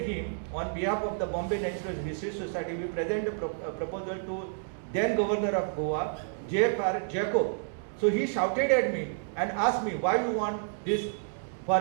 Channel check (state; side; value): silent; left; digital silence